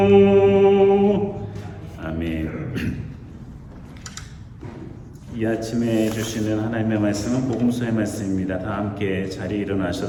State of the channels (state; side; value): identical; both; correlation 1.00